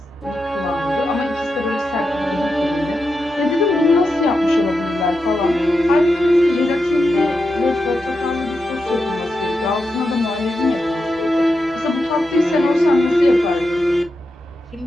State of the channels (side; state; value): both; normal; correlation 0.87